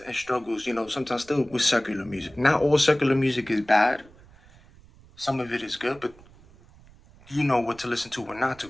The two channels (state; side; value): noise; right; rumble, 25 dB below the sound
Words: and struggles, sometimes still with secular music. Not all secular music is bad. Some of it is good, but you know what to listen to or not to,